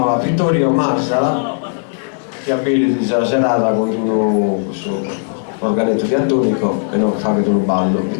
Vittorio Marsala, che abili questa serata con un organetto diatonico e non fa che un ballo.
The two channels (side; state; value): right; silent; digital silence